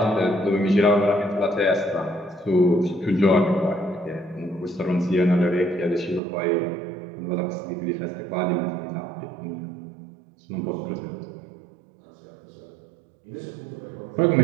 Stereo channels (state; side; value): drops out; left; at 6.2 s